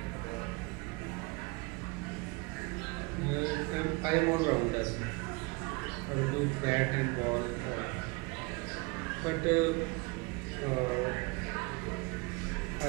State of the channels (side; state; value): left; quieter; 27.6 dB